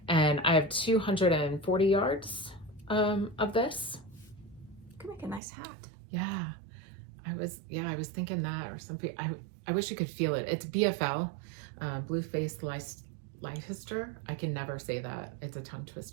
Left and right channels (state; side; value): drops out; left; at 5.4 s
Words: And I have 240 yards of this. Could make a nice hat. Yeah, I was thinking that or something. I wish you could feel it. It's BFL, Blue Faced Leicester. I can never say that. It's a tongue